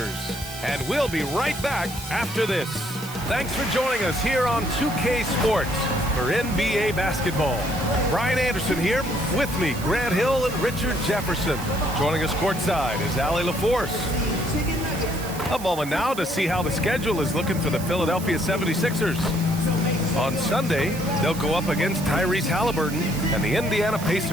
and we'll be right back after this. Thanks for joining us here on 2K Sports for NBA basketball. Brian Anderson here, with me, Grant Hill and Richard Jefferson. Joining us courtside is Allie LaForce. A moment now to see how the schedule is looking for the Philadelphia 76ers. On Sunday, they'll go up against Tyrese Halliburton and the Indiana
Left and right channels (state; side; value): noise; right; hiss, 13 dB below the sound